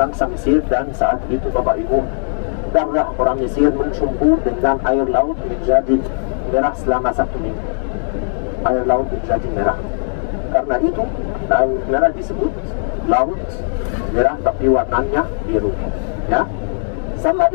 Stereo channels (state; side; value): silent; right; digital silence